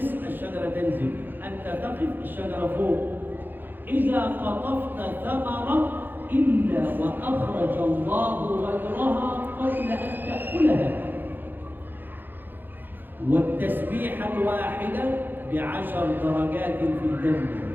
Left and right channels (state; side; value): late; left; 0.092 ms